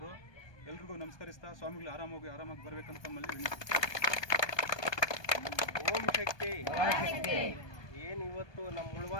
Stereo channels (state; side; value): late; right; 1.2 ms